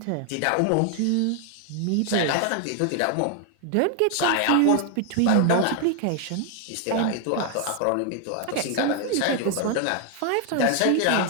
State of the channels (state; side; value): different; both; correlation 0.00